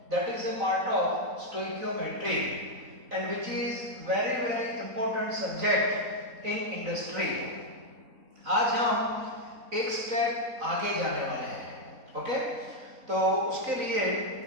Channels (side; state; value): left; late; 4.0 ms